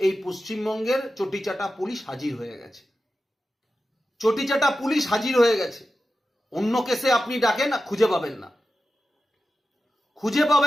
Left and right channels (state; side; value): normal; both; correlation 0.92